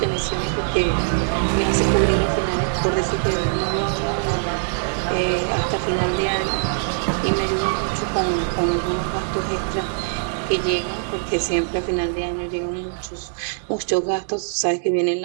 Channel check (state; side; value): silent; left; digital silence